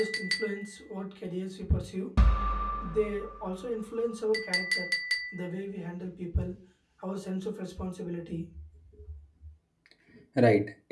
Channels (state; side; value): identical; both; correlation 1.00